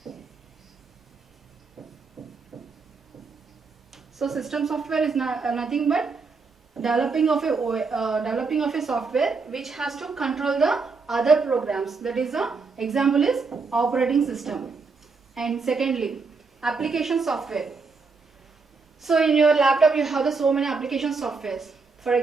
So system software is nothing but developing of a software which has to control the other programs. That is the example is operating system. And secondly, application software. So in your laptop you have so many application softwares. For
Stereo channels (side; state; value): left; quieter; 4.5 dB